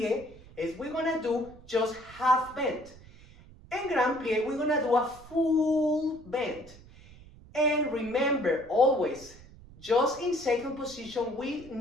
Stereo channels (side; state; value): right; noise; rumble, 21 dB below the sound